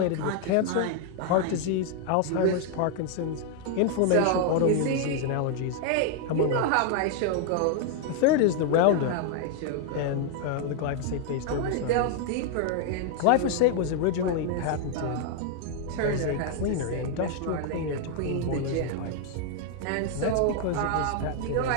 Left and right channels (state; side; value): different; both; correlation 0.00